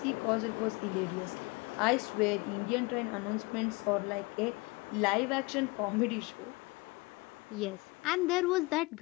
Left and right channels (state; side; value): quieter; right; 25.7 dB